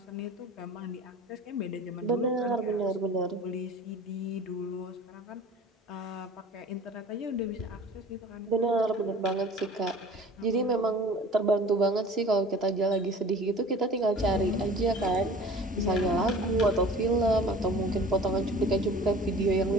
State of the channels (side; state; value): both; normal; correlation 0.44